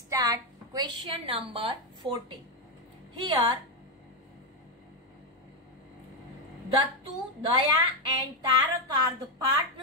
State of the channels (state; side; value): normal; both; correlation 0.05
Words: question number 14. Here Dattu, Daya and Tarak are the